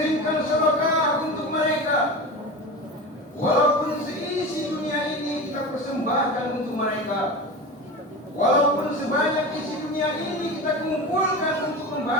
sedekah untuk mereka. Walaupun seisi dunia ini kita persembahkan untuk mereka. Walaupun sebanyak isi dunia ini kita kumpulkan untuk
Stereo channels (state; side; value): normal; both; correlation 0.28